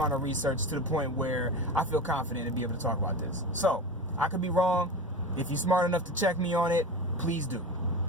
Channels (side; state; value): both; normal; correlation 0.28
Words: of research to the point where I feel confident to be able to talk about this. So, I could be wrong. If you're smart enough to check me on it, please do.